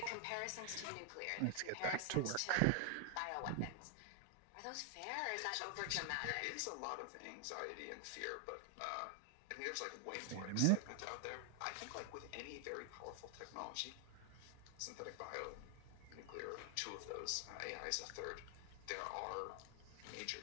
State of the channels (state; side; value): different; both; correlation 0.00